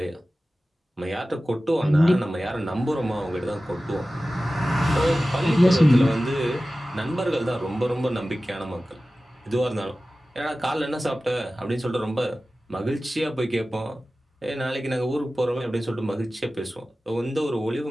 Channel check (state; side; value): normal; both; correlation 0.96